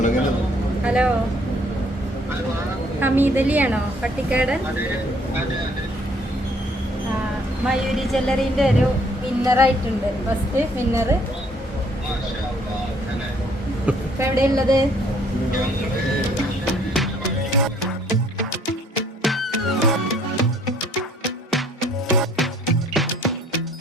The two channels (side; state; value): both; normal; correlation 0.62